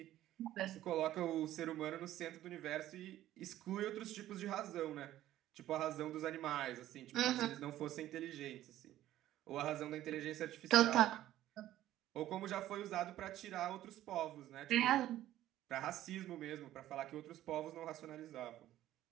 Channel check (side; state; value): left; quieter; 13.6 dB